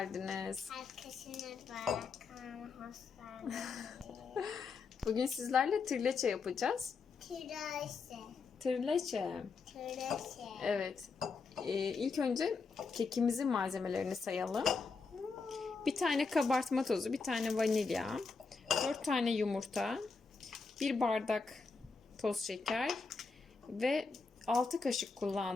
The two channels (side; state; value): right; quieter; 4.6 dB